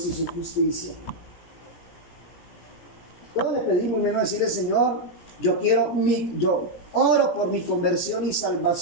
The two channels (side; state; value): right; late; 17 ms